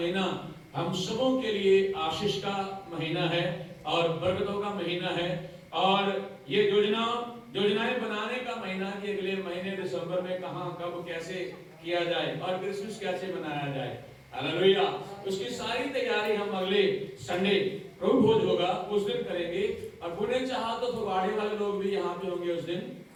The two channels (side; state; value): both; identical; correlation 1.00